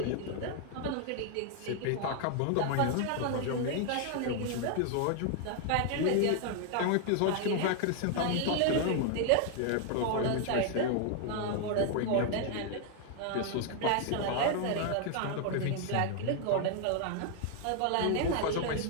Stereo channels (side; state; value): both; different; correlation 0.00